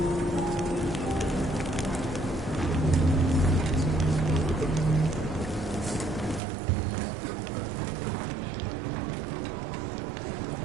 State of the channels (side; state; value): left; drops out; at 6.4 s